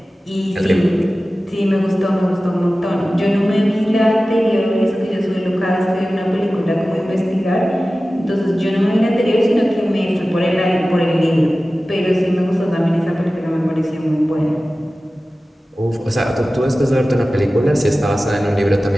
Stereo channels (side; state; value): both; normal; correlation 0.96